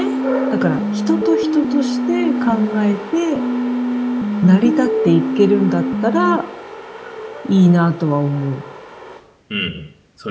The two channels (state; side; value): identical; both; correlation 1.00